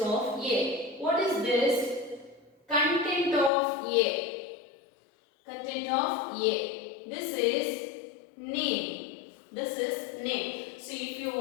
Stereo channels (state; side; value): drops out; right; at 3.5 s